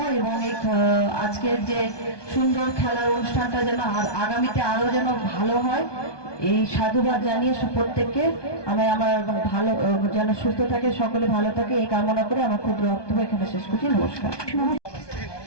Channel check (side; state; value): right; late; 1.2 ms